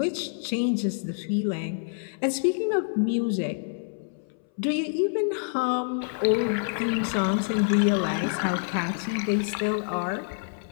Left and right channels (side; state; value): right; silent; 60 dB below the other